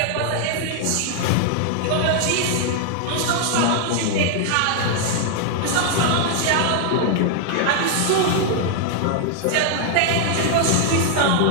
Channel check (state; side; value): different; both; correlation 0.00